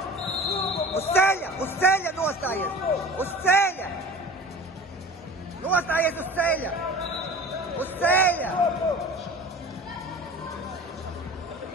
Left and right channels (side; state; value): both; normal; correlation 0.38